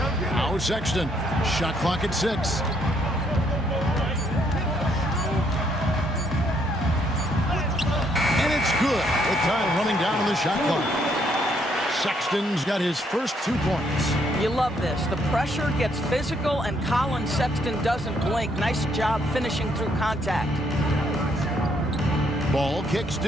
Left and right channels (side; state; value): both; normal; correlation 0.70